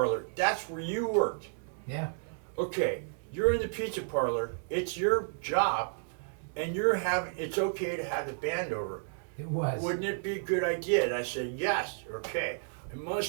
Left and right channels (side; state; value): left; silent; digital silence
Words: That's where you worked. Yeah. Okay, you're in the pizza parlor. It's your job, and it's okay to have the band over. It was. Wouldn't it be a good idea? And I said, yes, okay. I